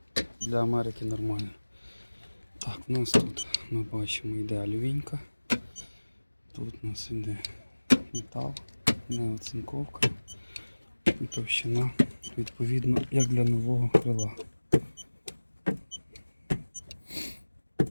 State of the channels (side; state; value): both; inverted; correlation -1.00